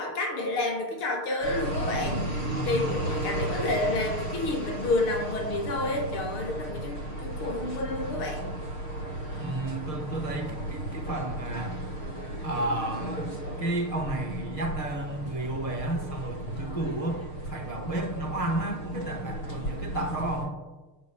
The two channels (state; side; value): late; right; 6.6 ms